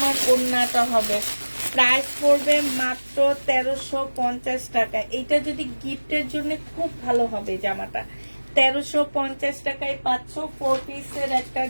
ওড়নাটা হবে। প্রাইস পড়বে মাত্র 1350 টাকা। এটা যদি গিফটের জন্য খুব ভালো হবে জামাটা। 1350 টাকায় পাচ্ছ 4 পিসের একটা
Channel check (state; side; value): inverted; both; correlation -1.00